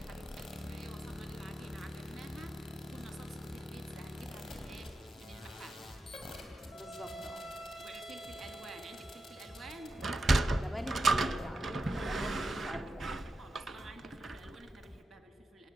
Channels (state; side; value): normal; both; correlation 0.89